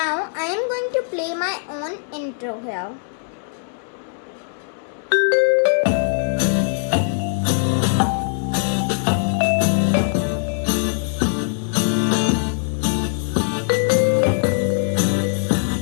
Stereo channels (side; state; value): right; silent; digital silence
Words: I am going to play my own intro here.